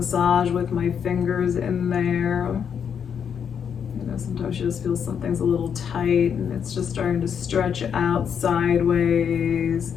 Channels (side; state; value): right; quieter; 7.6 dB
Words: with my fingers in there. Sometimes you just feel something's a little tight and it's just starting to stretch out sideways.